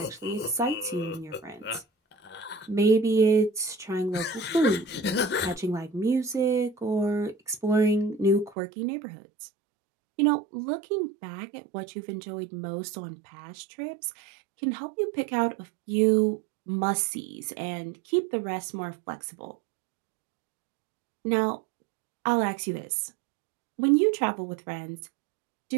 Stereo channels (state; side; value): drops out; left; at 8.6 s